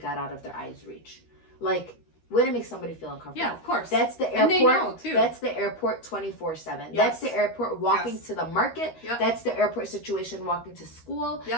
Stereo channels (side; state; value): right; late; 13 ms